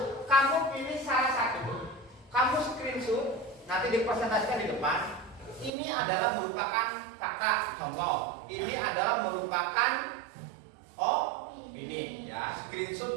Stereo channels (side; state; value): left; drops out; at 5.7 s